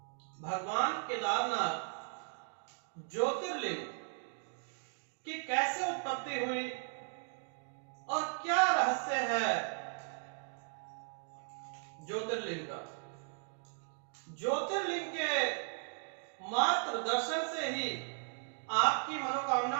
भगवान केदारनाथ ज्योतिर्लिंग की कैसे उत्पत्ति हुई और क्या रहस्य है ज्योतिर्लिंग का। ज्योतिर्लिंग के मात्र दर्शन से ही आपकी मनोकामना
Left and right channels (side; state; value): left; silent; 53 dB below the other